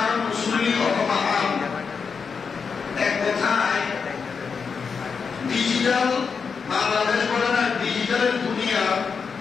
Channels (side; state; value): right; quieter; 5.7 dB